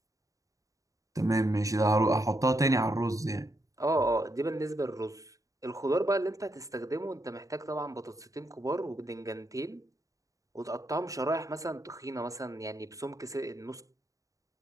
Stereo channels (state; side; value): late; left; 0.16 ms